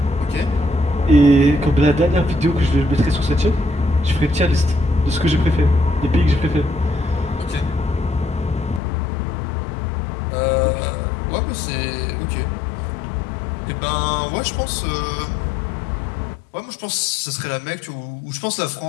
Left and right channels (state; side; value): drops out; right; at 8.8 s